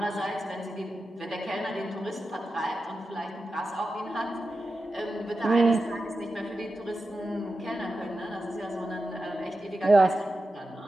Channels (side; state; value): both; normal; correlation 0.91